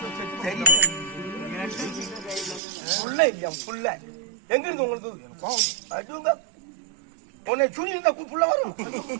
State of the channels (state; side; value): drops out; left; at 2.6 s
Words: புள்ள இல்லையா? புள்ள எங்க இருந்து உங்களுக்கு அதுங்க உன்னை சுனி இருந்தா புள்ள வரும்.